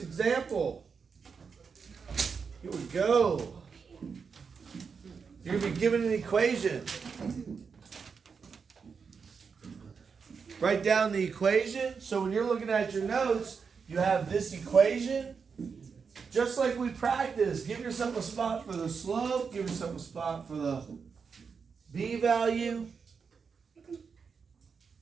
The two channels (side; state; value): left; quieter; 5.7 dB